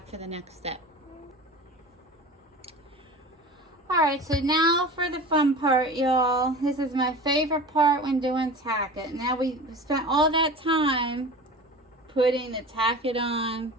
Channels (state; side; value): normal; both; correlation 0.35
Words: for the next step. Alright, so now for the fun part, y'all. This is my favorite part when doing tack it. Now we spent all that time putting the tack it on,